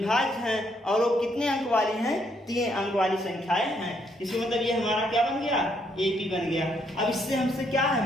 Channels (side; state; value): both; normal; correlation 0.72